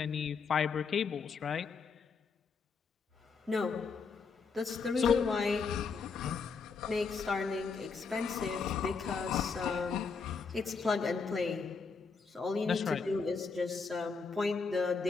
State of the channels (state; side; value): quieter; right; 5.1 dB